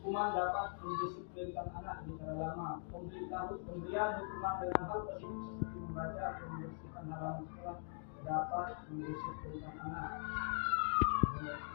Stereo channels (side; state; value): right; silent; digital silence